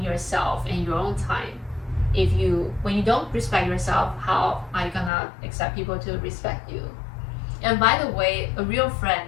yourself and your own time. when you don't respect yourself, how are you gonna expect people to respect you? And by the way, a real friend,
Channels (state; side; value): drops out; right; at 5.1 s